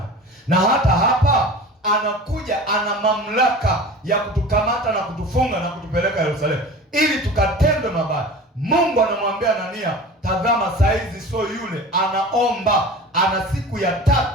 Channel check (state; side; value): normal; both; correlation 0.37